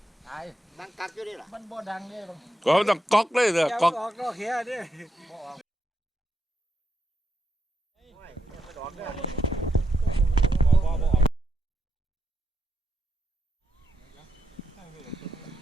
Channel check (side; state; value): both; normal; correlation 0.83